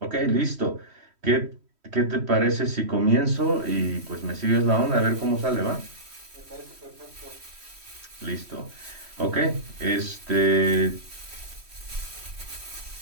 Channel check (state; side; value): late; left; 3.1 ms